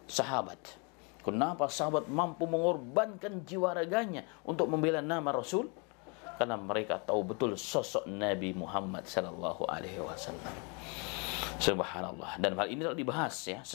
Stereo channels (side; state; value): right; quieter; 33.4 dB